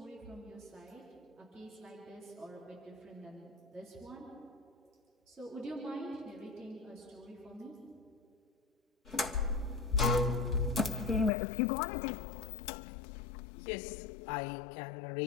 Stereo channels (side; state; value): right; drops out; at 11.3 s